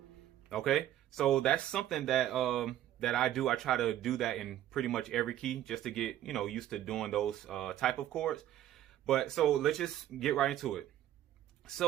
Okay. So that's something that that I do. I try to do that in pretty much every key, just to get, you know, used to doing those type of chords. But so let's just get right into it.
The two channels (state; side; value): quieter; left; 12.6 dB